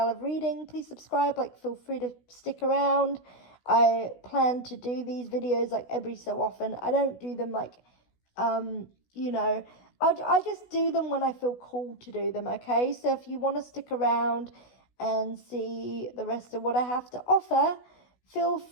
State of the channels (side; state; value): right; late; 16 ms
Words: of reading, please subscribe. Like, feel free to stick around. I plan to do these videos like every so often. I don't do them like, you know, I just do them when I feel called to do them, okay? So if you want to stick around and see the rest of what I have to offer, feel